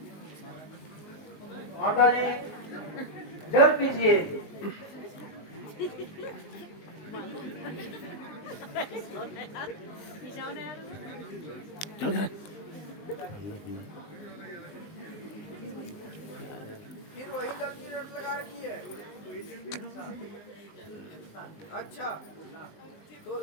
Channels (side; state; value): right; late; 19 ms